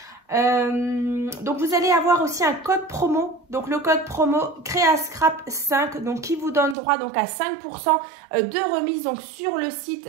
Donc vous allez avoir aussi un code promo, donc le code promo CréaScrap5, qui vous donne droit à 5% de remise sur le site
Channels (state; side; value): drops out; left; at 6.8 s